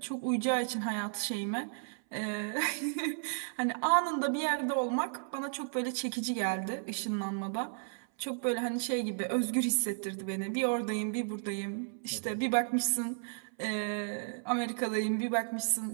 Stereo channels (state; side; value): silent; left; 55 dB below the other